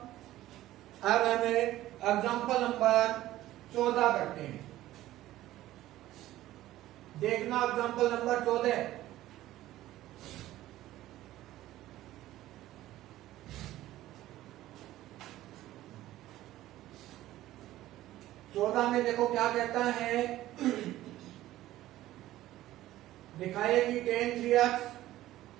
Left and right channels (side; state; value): left; quieter; 15.0 dB